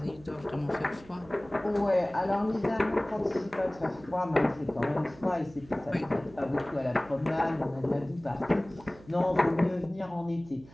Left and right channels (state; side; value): noise; right; hum, 22 dB below the sound